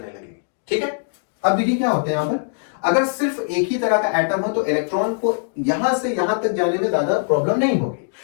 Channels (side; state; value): right; silent; digital silence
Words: लगेगी। ठीक है, अब देखिए क्या होता है यहां पर, अगर सिर्फ एक ही तरह का एटम हो तो इलेक्ट्रॉन को यहां से यहां तक जाने में ज्यादा प्रॉब्लम नहीं होगी।